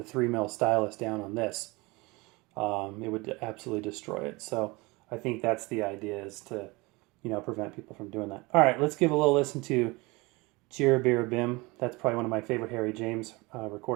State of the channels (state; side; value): quieter; left; 24.4 dB